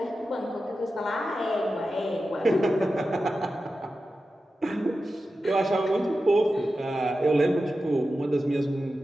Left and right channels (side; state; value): both; normal; correlation 0.92